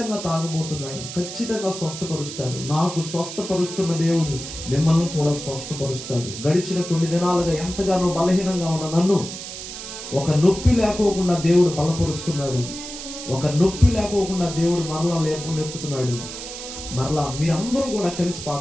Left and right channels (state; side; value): noise; right; hiss, 10 dB below the sound